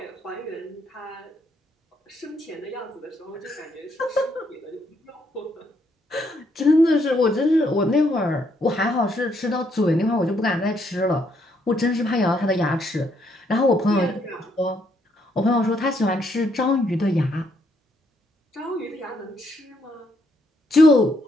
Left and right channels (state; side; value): normal; both; correlation 0.73